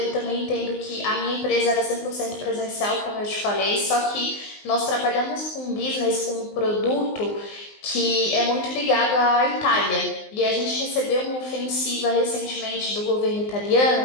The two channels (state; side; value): late; right; 19 ms